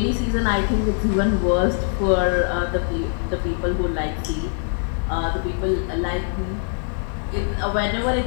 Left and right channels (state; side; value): silent; right; 57 dB below the other